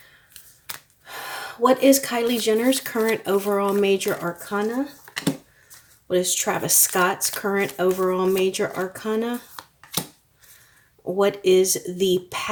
What is Kylie Jenner's current overall major arcana? What is Travis Scott's current overall major arcana? What is the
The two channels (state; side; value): identical; both; correlation 1.00